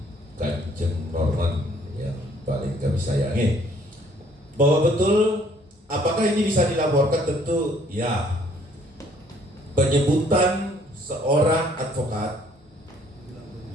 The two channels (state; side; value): normal; both; correlation 0.61